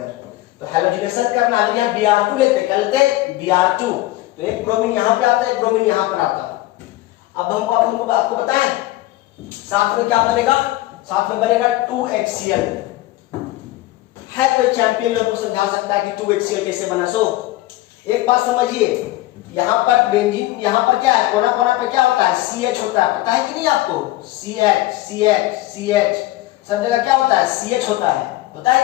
तो हैलोजिनेशन करना है, यहाँ Br2 लेते हैं, क्या लेते हैं, Br2। तो एक ब्रोमीन यहाँ पे आता है, एक ब्रोमीन यहाँ पर आता है। अब हमको आपको बताएं साथ में क्या बनेगा, साथ में बनेगा 2HCl। है कोई चैंपियन लोग को समझा सकता है कि 2HCl कैसे बना? सो एक बात समझिए, यहाँ पर बेंजीन, यहाँ पर क्या है, कोना कोना पर क्या होता है, CH होता है, पता है कि नहीं आपको? CH सब जगह क्या होता है, CH होता है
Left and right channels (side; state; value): right; quieter; 17.2 dB